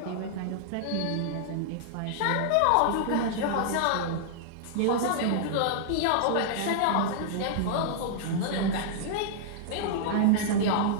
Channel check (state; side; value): different; both; correlation -0.01